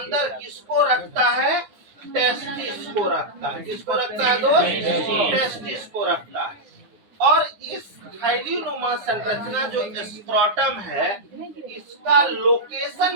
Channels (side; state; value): left; late; 9.7 ms